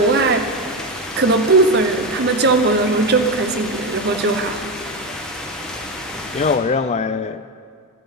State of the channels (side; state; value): both; normal; correlation 0.14